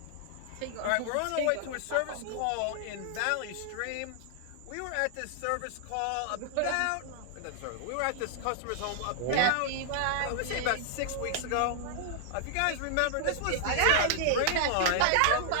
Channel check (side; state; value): both; different; correlation -0.01